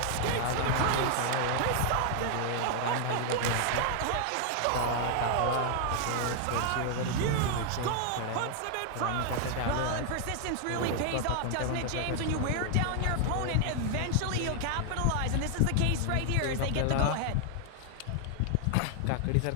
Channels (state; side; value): different; both; correlation 0.00